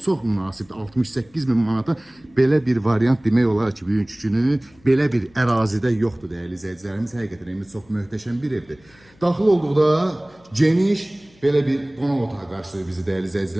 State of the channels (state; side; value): noise; left; hum, 29 dB below the sound